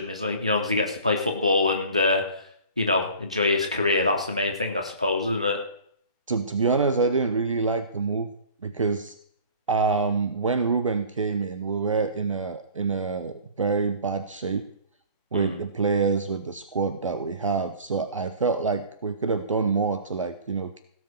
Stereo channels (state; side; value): inverted; both; correlation -0.44